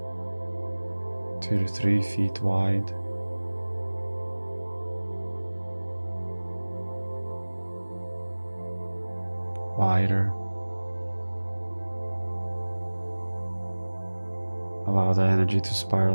2 to 3 feet wide. Wider. Allow the energy to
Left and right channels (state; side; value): inverted; both; correlation -1.00